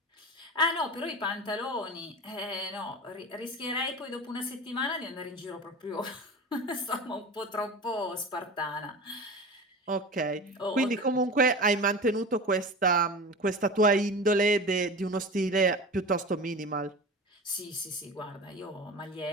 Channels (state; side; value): normal; both; correlation 0.32